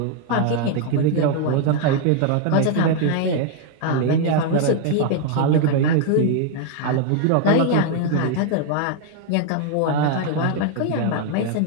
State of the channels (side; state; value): both; different; correlation 0.00